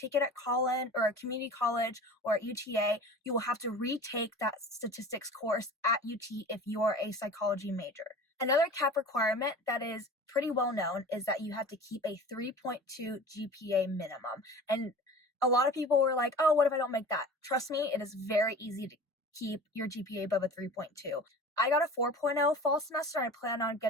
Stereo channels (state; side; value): normal; both; correlation 0.39